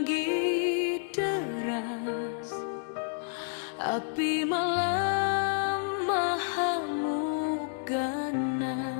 deras, api malam mengamuk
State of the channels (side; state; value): right; silent; digital silence